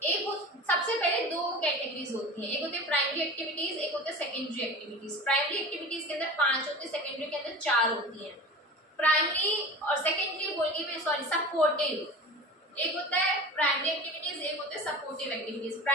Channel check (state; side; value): normal; both; correlation 0.35